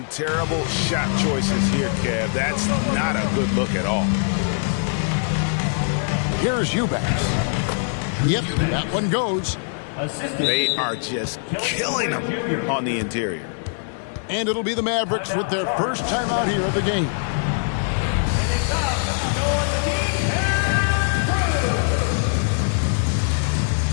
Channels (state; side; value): silent; right; 64 dB below the other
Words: terrible shot choices here, Kev. That's not a good look at all. Here's Eubanks. Yep, that one goes. They are just killing them on the interior. And it'll be the Mavericks with their first time out here of the game.